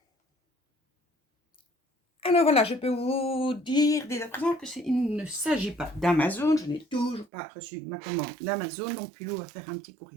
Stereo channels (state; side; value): drops out; left; at 7.2 s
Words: Alors voilà, je peux vous dire dès à présent que il ne s'agit pas d'Amazon. Je n'ai toujours pas reçu ma commande d'Amazon, donc Pilou va faire un petit